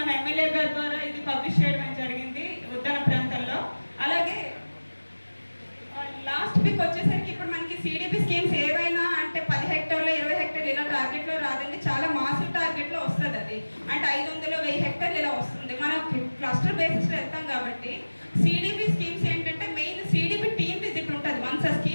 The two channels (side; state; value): both; inverted; correlation -1.00